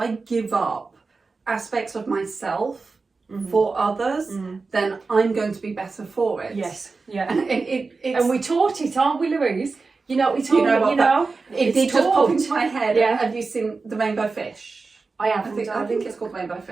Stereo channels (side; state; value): left; quieter; 4.1 dB